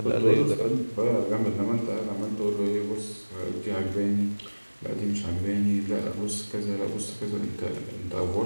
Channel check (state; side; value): inverted; both; correlation -1.00